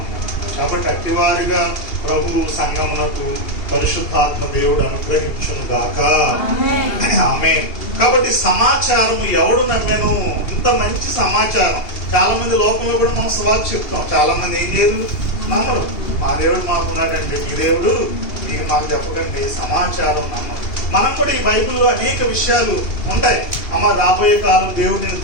కాబట్టి అట్టివారిగా ప్రభు సంగమునకు పరిశుద్ధాత్మ దేవుడు అనుగ్రహించును గాక. ఆమేన్. కాబట్టి సమాచారం ఎవడు నమ్మెను? ఇంత మంచి సమాచారం. చాలా మంది లోకంలో కూడా మనం సువార్త చెప్తాం, చాలా మంది ఏం చేయరు, నమ్మరు. మా దేవుడు మాకున్నాడండి, మీ దేవుడు మీరు మాకు చెప్పకండి. సమాచారం నమ్మరు. మనం కూడా ఈ బైబిల్లో అనేక విషయాలు ఉంటాయి. అమ్మ రాబోయే కాలం దేవుడు నిన్ను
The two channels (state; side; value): late; right; 2.8 ms